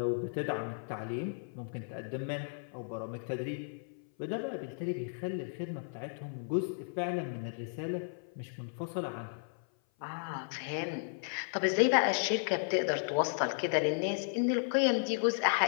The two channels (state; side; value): silent; right; 55 dB below the other